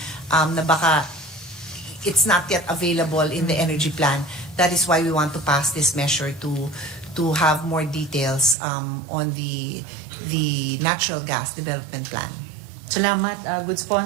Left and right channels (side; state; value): left; drops out; at 8.6 s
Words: na baka it's not yet available in the energy plan. That is why we want to pass this measure to have more details on the natural gas development plan. Salamat, good